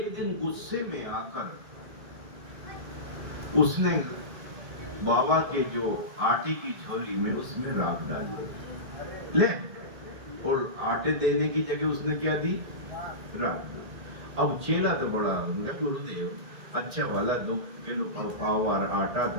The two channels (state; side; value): late; left; 2.1 ms